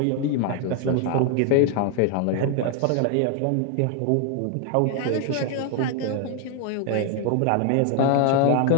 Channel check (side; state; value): both; different; correlation 0.00